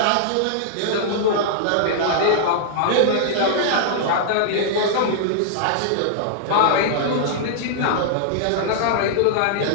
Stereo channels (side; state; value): both; different; correlation -0.01